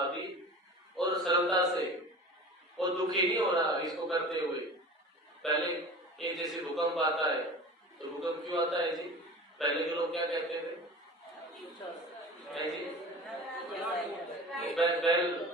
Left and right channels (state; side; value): normal; both; correlation 0.37